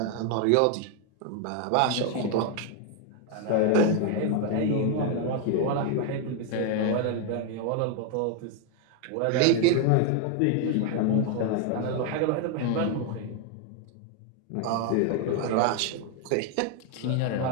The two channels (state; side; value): different; both; correlation 0.01